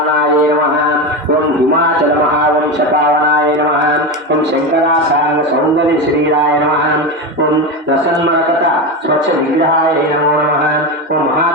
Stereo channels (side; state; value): both; normal; correlation 0.18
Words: నమః. ఓం హిమాచల మహావంశపావనాయ నమః. ఓం శంకరాసాంగ సౌందర్య శ్రీరాయ నమః. ఓం రసన్మరకట స్వచ్ఛ విగ్రహాయ నమో నమః. ఓం